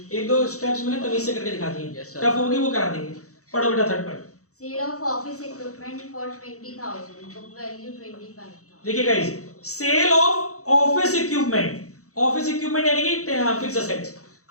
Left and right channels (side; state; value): right; late; 0.65 ms